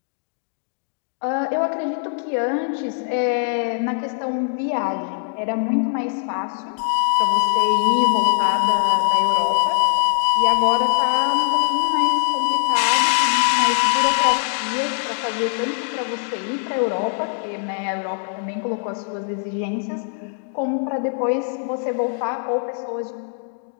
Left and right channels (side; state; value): right; silent; digital silence